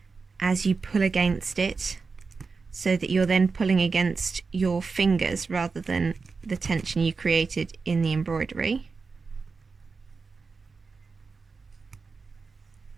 as you pull against it, so that you're then pulling against your fingers rather than the tension you created in the embroidery.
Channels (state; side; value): quieter; left; 4.6 dB